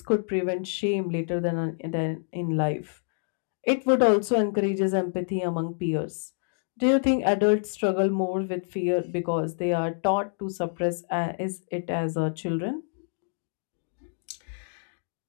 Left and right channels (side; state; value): right; silent; digital silence